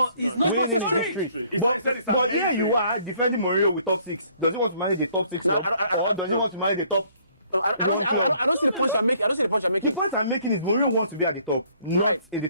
it's not winning history. But here you are defending Mourinho with top 6. Does he want to manage the top 6 or does he want to manage the top? I don't see the point I'm making. The point I'm making is Mourinho wants to be at the top, not in the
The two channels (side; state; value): both; inverted; correlation -0.62